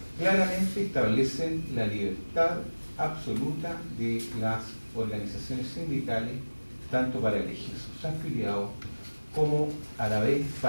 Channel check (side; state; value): both; inverted; correlation -1.00